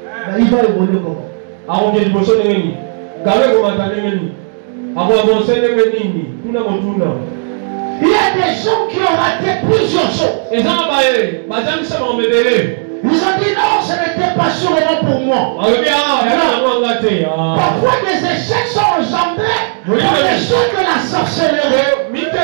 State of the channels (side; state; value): left; silent; digital silence